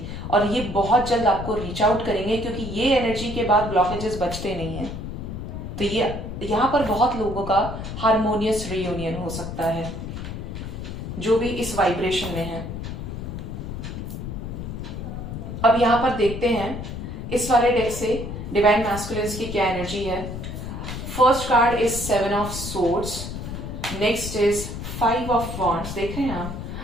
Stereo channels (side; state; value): left; noise; rumble, 7 dB below the sound